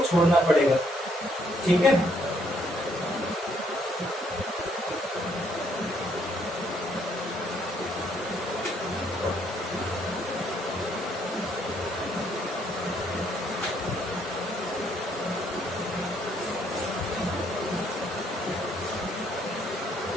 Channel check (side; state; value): both; normal; correlation 0.69